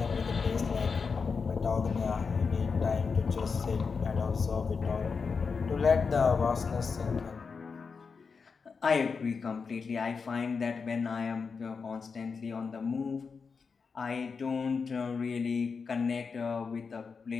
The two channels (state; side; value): quieter; right; 5.2 dB